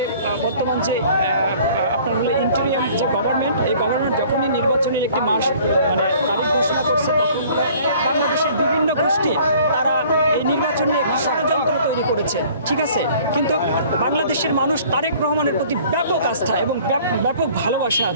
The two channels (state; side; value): inverted; both; correlation -0.52